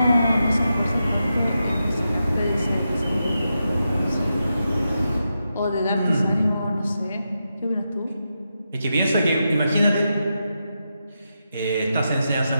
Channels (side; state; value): both; inverted; correlation -0.87